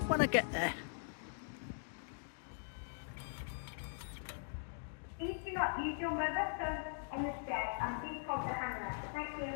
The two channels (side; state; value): right; silent; digital silence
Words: when I get there. Use your mobile phone on the stairs and please hold the hanger. Thank